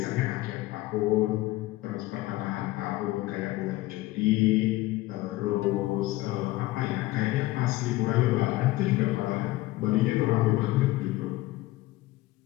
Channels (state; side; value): quieter; right; 18.1 dB